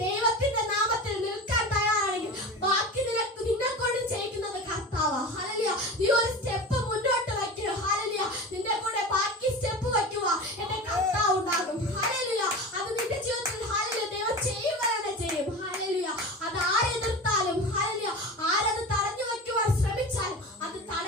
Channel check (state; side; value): normal; both; correlation 0.30